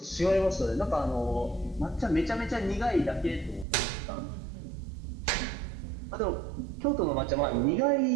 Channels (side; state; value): left; drops out; at 3.7 s